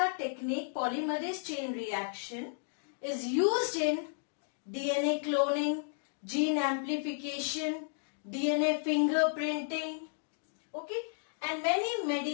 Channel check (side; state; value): right; silent; digital silence